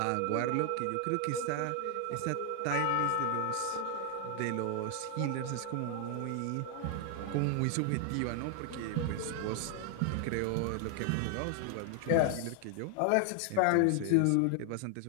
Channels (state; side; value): different; both; correlation 0.00